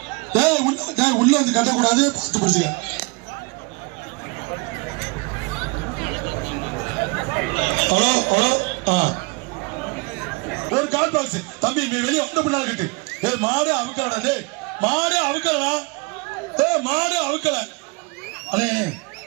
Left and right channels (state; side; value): quieter; left; 28.8 dB